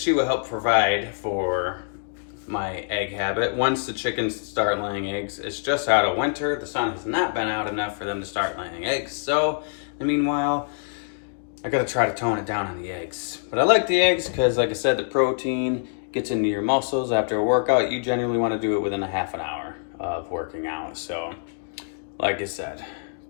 will help provide for my egg habit. Once the chickens start laying eggs, it's just out of winter. The sun has not been out enough for them to start laying eggs. So, meanwhile, I gotta try to tone it down on the eggs. But I like the eggs because, like I said, the protein gets into your muscles after a workout. You generally want to do it within a half an hour of working out. So, like I said,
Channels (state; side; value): silent; right; digital silence